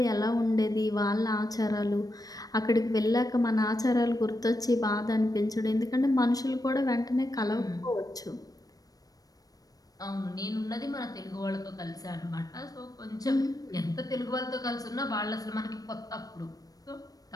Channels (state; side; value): late; right; 0.18 ms